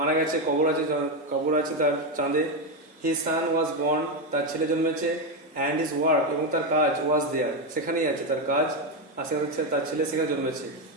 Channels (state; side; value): normal; both; correlation 0.08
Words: গেছে, কবর আছে তার চাঁদে। হিজ সান ওয়াজ বর্ন, তার ছেলে জন্মেছে। অ্যান্ড হিজ ওয়ার্ক, এবং তার কাজ, ওয়াজ দেয়ার, সেখানেই আছে তার কাজ, আর তার ছেলে সেখানে জন্মেছে।